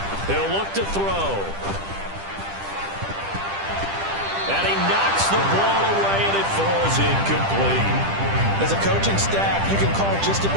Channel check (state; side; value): late; left; 10 ms